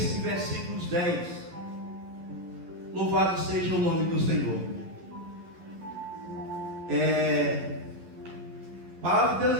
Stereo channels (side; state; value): left; late; 11 ms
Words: versículos 10. Louvado seja o nome do Senhor. A palavra de Deus